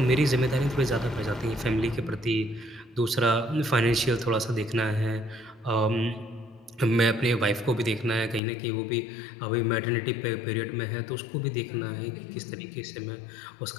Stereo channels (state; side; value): drops out; right; at 8.4 s